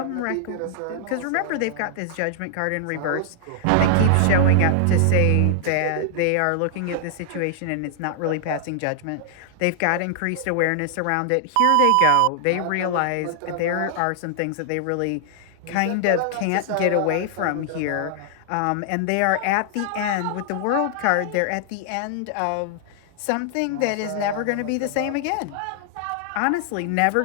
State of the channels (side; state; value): both; different; correlation -0.01